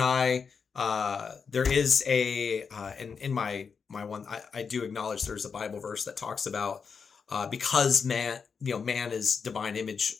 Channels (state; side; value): quieter; right; 5.8 dB